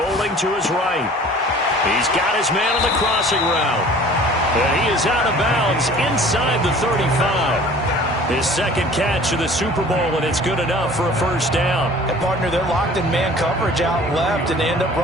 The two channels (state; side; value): normal; both; correlation 0.47